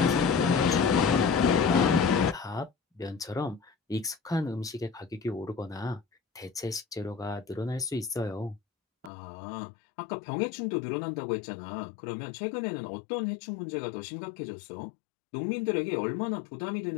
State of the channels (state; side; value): drops out; right; at 9.1 s